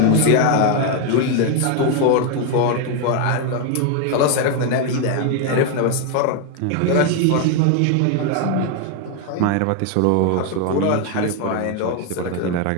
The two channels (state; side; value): different; both; correlation 0.01